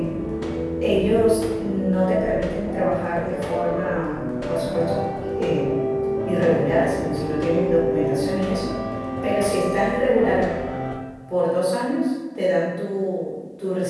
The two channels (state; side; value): identical; both; correlation 1.00